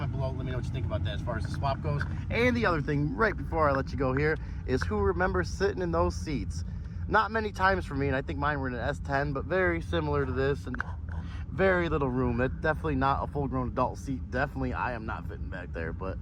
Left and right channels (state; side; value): identical; both; correlation 1.00